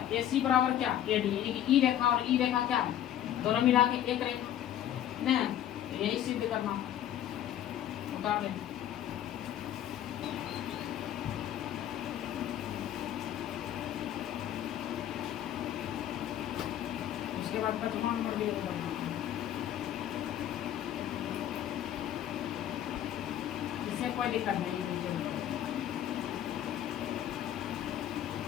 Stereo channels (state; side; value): quieter; right; 11.3 dB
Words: AC बराबर क्या, AD, यानी कि ई रेखा और ई रेखा क्या है, दोनों मिला के एक रेखा नहीं, तो यही सिद्ध करना उतार लें। उसके बाद पांचवा नंबर भी इससे कोई दिक्कत नहीं है।